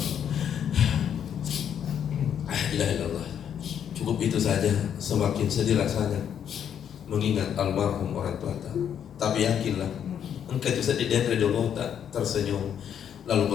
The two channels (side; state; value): right; quieter; 8.8 dB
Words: La ilaha illallah. Cukup itu saja. Semakin sedih rasanya mengingat almarhum orang tua. Tapi yakinlah, engkau itu sedih dan redolo tak tersenyum